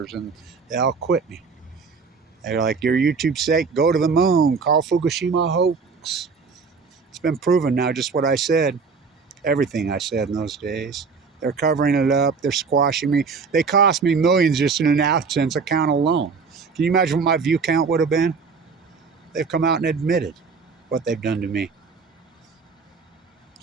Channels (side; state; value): left; quieter; 5.1 dB